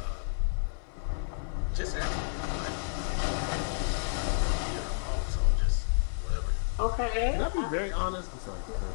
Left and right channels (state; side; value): silent; right; 57 dB below the other